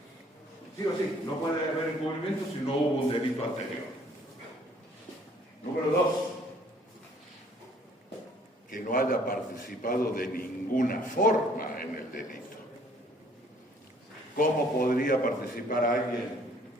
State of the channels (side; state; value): both; normal; correlation 0.59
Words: Sí o sí, no puede haber encubrimiento si no hubo un delito anterior. Número 2, que no haya participado de ninguna forma en el delito. ¿Cómo podría participar alguien